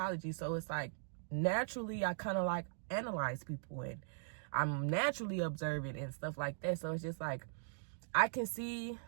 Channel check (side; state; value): left; silent; digital silence